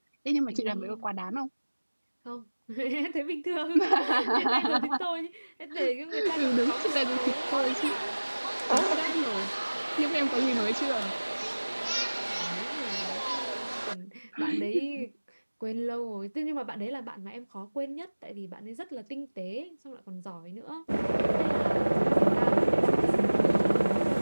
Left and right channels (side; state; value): both; inverted; correlation -1.00